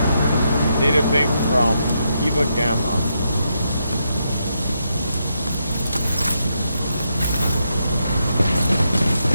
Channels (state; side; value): inverted; both; correlation -0.81